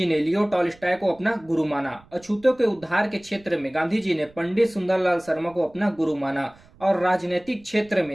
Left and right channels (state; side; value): noise; right; rumble, 27 dB below the sound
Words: ने लियो टॉल्स्टॉय को अपना गुरु माना। अछूतों के उद्धार के क्षेत्र में गांधी जी ने पंडित सुंदरलाल शर्मा को अपना गुरु माना और राजनीतिक क्षेत्र